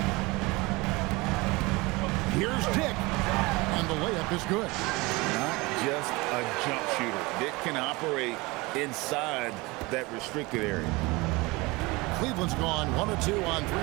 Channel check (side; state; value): left; quieter; 23.6 dB